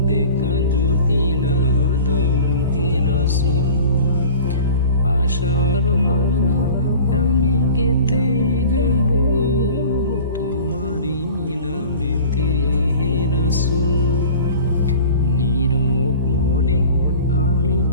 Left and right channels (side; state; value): both; inverted; correlation -0.41